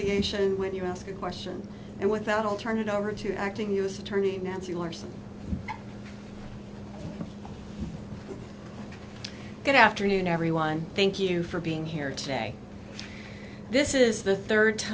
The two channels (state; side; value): identical; both; correlation 1.00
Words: when you ask a question. And with that, I'll turn it over to Acting U.S. Attorney Nancy Larson. Good afternoon, everyone. Thank you for being here today. This is the third